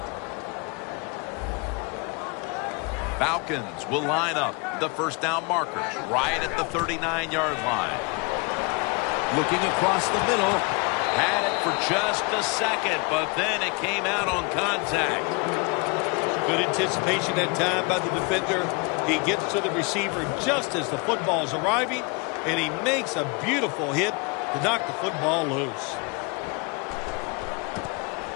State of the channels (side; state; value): right; quieter; 30.8 dB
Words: Falcons will line up the first down markers right at the 39-yard line. Looking across the middle. Had it for just a second, but then it came out on contact. Good anticipation that time by the defender. He gets to the receiver just as the football is arriving, and he makes a beautiful hit to knock the football loose.